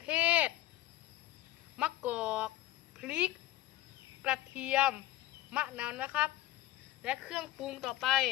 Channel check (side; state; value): right; quieter; 15.3 dB